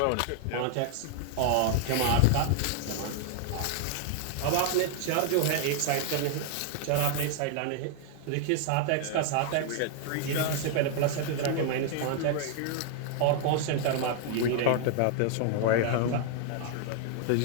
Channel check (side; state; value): both; different; correlation 0.00